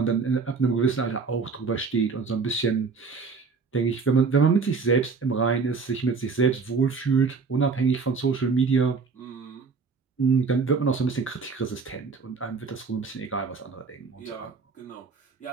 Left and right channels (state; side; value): quieter; left; 4.9 dB